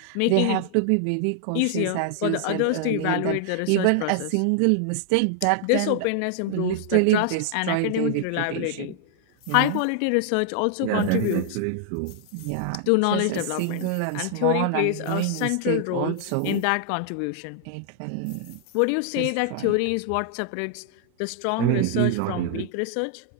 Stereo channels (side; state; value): both; different; correlation 0.00